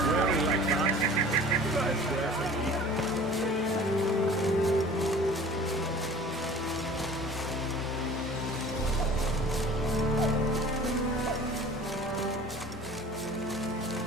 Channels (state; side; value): normal; both; correlation 0.45